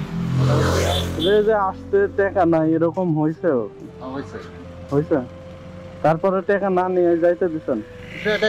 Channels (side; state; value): both; identical; correlation 1.00